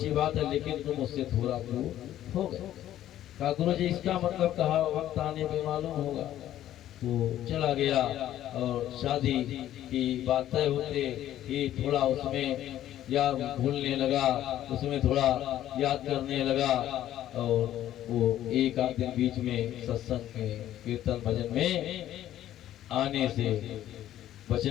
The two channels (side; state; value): right; quieter; 12.5 dB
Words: बात है, लेकिन तुम उससे थोड़ा दूर हो गए। कहा गुरु जी इसका मतलब कहा वक्त आने पे मालूम होगा। वो चला गया और शादी की बात तय होते ही थोड़ा उसमें याद भूलने लगा, उसमें थोड़ा याद करने लगा, और वो एक आध दिन बीच में सत्संग में कीर्तन भजन में आने से